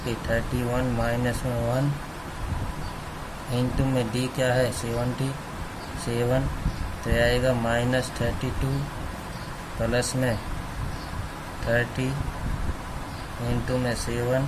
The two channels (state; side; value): identical; both; correlation 1.00